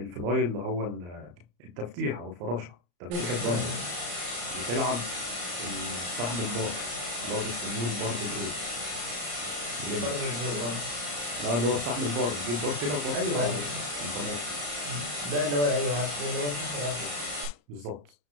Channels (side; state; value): left; late; 34 ms